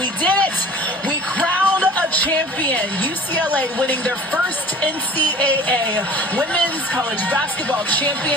did it. We crowned a champion. UCLA winning their first NCAA Women's College Basketball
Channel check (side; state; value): both; normal; correlation 0.44